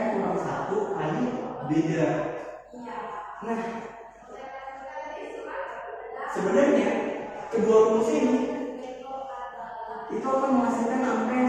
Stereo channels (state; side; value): identical; both; correlation 1.00